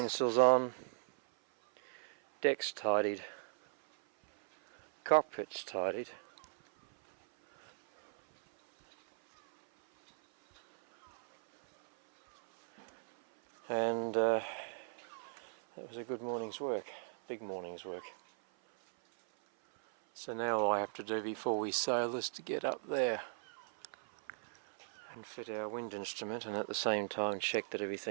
on, deck's tidied, cockpit's tidied, and that was a good morning's work, big morning's work. So now all I have to do before we sail is to get up there and fit our wind instrument, and at the same time check that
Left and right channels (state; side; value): silent; left; 53 dB below the other